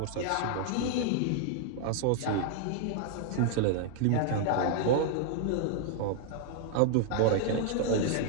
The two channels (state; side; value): different; both; correlation 0.00